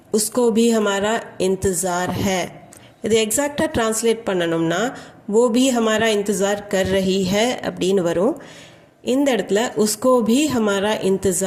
உஸ்கோ பி ஹமாரா இன்தஜார் ஹே. இது எக்ஸாக்டாக ட்ரான்ஸ்லேட் பண்ணணும்னா वो भी हमारा इंतज़ार कर रही है அப்படின்னு வரும். இந்த இடத்துல உஸ்கோ भी हमारा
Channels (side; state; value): both; identical; correlation 1.00